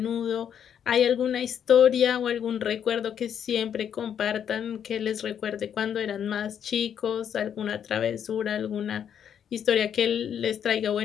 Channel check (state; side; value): quieter; right; 8.7 dB